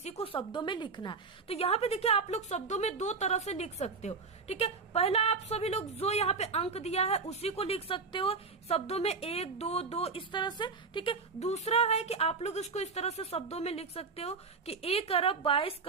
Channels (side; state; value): left; quieter; 4.6 dB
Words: को शब्दों में लिखना है। तो यहाँ पे देखिए आप लोग शब्दों में 2 तरह से लिख सकते हो। ठीक है, पहला आप सभी लोग जो यहाँ पे अंक दिया है उसी को लिख सकते हो शब्दों में 1, 2, 2 इस तरह से। ठीक है, दूसरा है कि आप लोग इसको इस तरह से शब्दों में लिख सकते हो कि 1 अरब 22